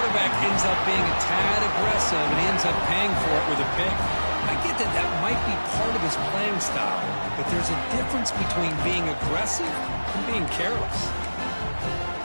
ends up being a tad aggressive and he ends up paying for it with a pick. I get that that might be part of his playing style, but there's a difference between being aggressive and being careless.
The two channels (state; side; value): inverted; both; correlation -1.00